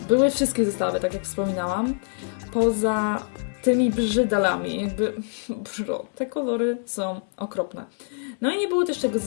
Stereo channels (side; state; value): right; silent; digital silence